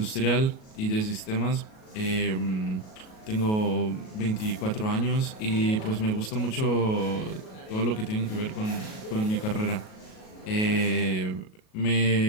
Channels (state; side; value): late; right; 37 ms